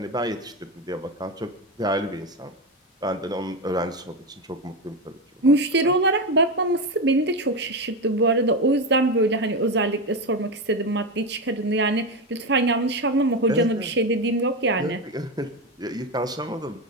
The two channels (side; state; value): both; normal; correlation 0.15